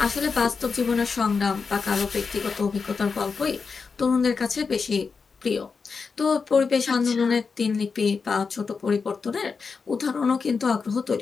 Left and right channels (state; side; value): quieter; right; 5.1 dB